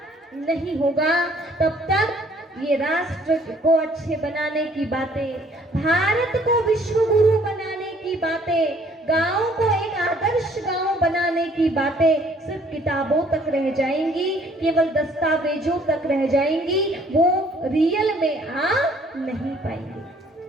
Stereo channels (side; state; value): both; normal; correlation 0.60